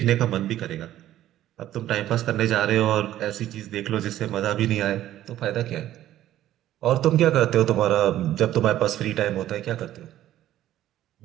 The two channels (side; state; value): left; quieter; 13.1 dB